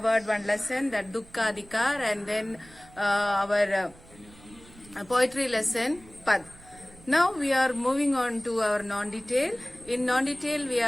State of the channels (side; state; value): right; noise; rumble, 23 dB below the sound